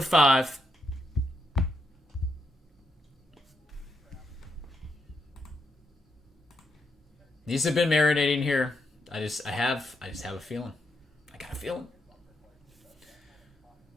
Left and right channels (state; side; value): normal; both; correlation 0.80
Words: 5. These have been marinating here. I just have a feeling. I got a feeling.